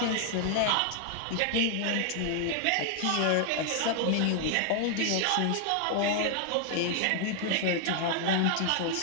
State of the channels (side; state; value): both; different; correlation 0.00